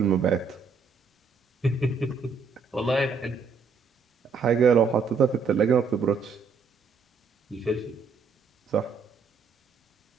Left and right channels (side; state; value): left; quieter; 5.1 dB